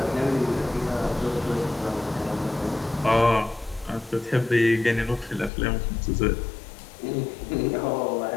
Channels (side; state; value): right; drops out; at 5.5 s